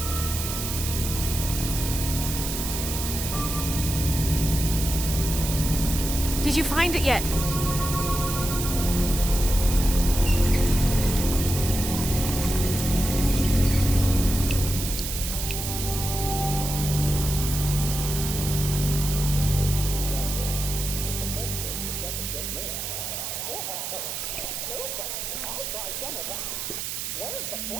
Did you find it yet?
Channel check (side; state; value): right; noise; hiss, 4 dB below the sound